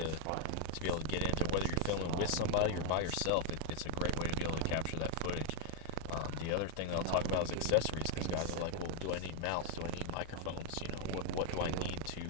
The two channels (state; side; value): different; both; correlation 0.00